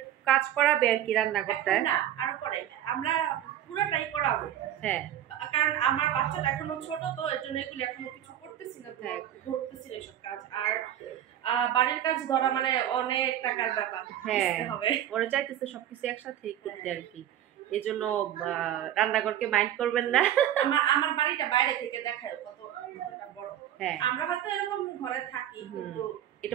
কাজ করাবে আর কি রান্নাঘরটায়। না, আর পরে আমরা পুরোটাই করাবো। হ্যাঁ, কারণ আমার বাচ্চাটা এখনো ছোট, তো এর জন্য এগুলো এখনো কিছু করতেছি না, ধরতেছি না এসব কাজ। আর বাড়ির কাজ ধরা মানে অনেক টাকার ব্যাপার। হ্যাঁ, ওরা চাইতেছে সবকিছু একসাথে করতে আর কি। এই জন্য রান্নাঘরকে মাইন্ড করবেন না। আমার বাড়িটা বাইরে থেকে দেখায় কতটা বড়। হ্যাঁ, আমরা হয়তো এরকম ঘরে থাকি, কিন্তু এটা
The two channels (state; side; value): quieter; left; 11.3 dB